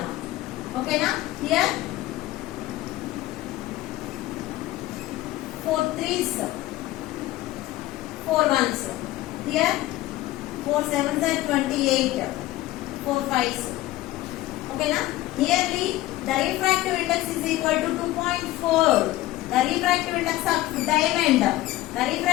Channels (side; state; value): right; quieter; 16.5 dB